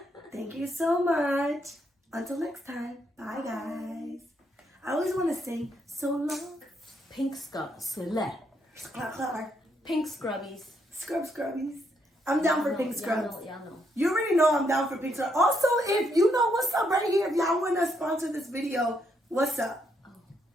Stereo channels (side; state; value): both; normal; correlation 0.76